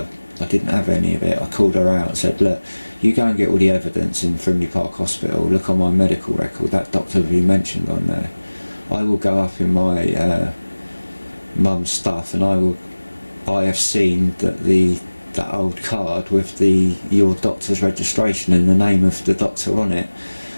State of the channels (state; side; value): inverted; both; correlation -1.00